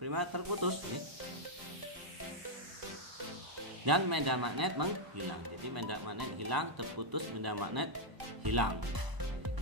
terputus nih. Dan medan magnet menghilang. Jadi medan magnet hilang, terputus, medan magnet hilang.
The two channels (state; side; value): late; left; 1.0 ms